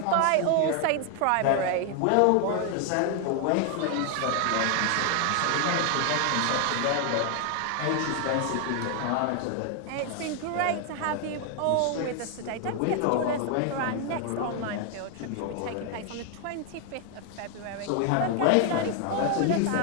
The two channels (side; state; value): both; different; correlation 0.00